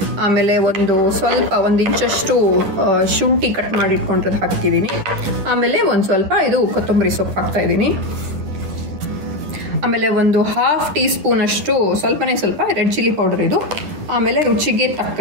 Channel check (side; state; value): left; late; 10 ms